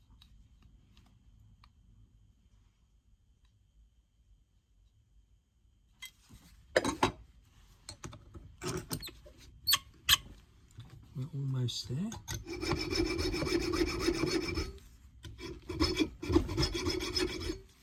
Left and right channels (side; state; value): both; identical; correlation 1.00